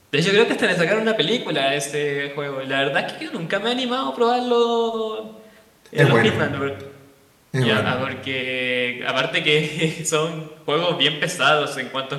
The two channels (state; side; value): identical; both; correlation 1.00